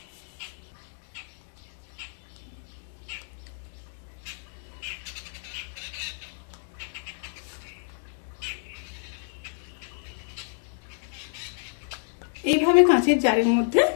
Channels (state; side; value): silent; right; digital silence